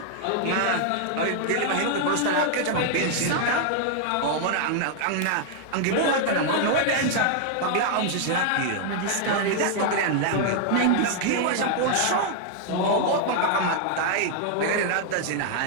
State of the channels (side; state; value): both; different; correlation 0.00